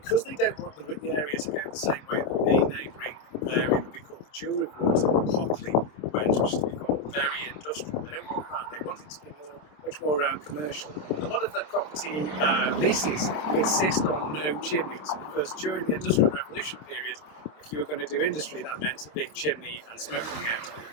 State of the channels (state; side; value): late; right; 26 ms